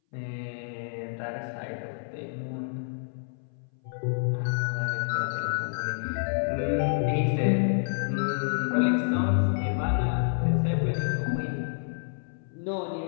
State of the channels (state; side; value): silent; right; 59 dB below the other